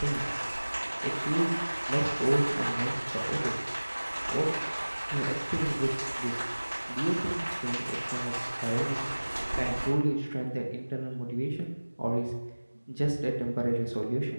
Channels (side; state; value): both; inverted; correlation -1.00